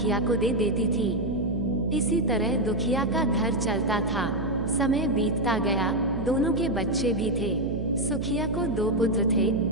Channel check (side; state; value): right; noise; hum, 5 dB below the sound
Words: को दे देती थी। इसी तरह दुखिया का घर चलता था। समय बीतता गया, दोनों के बच्चे भी थे। सुखिया को 2 पुत्र थे